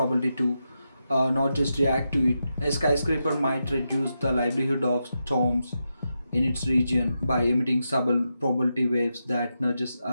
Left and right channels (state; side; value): inverted; both; correlation -0.87